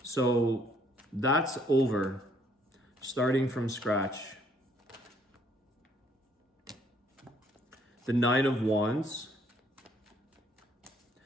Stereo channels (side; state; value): both; normal; correlation 0.65